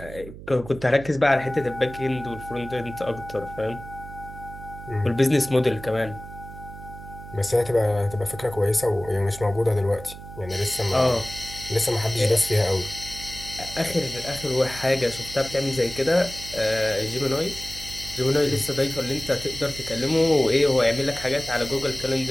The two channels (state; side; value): noise; right; hum, 14 dB below the sound